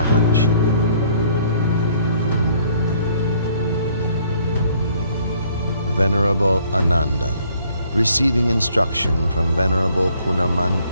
Venerable Ananda, receiving instruction from Venerable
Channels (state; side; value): inverted; both; correlation -0.62